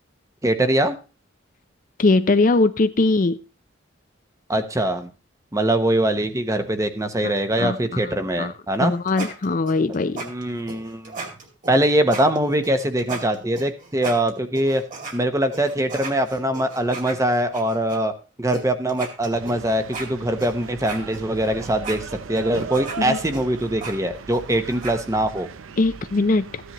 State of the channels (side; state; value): both; normal; correlation 0.56